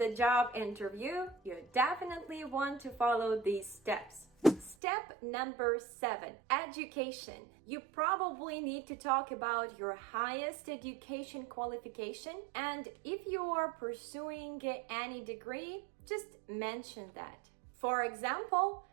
job interview, you definitely want to follow these steps. Step number 7, education. You probably need to talk about your highest education qualification, and if you are pursuing any degree, just mention that. For example,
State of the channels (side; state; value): left; drops out; at 4.8 s